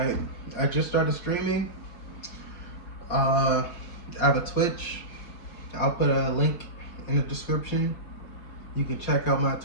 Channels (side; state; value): right; late; 5.6 ms